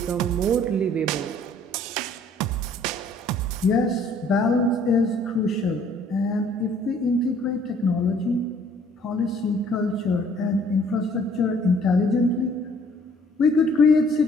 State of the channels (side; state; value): both; normal; correlation 0.58